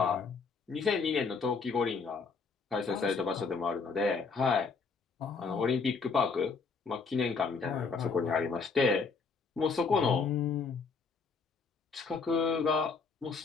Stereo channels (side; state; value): right; quieter; 4.9 dB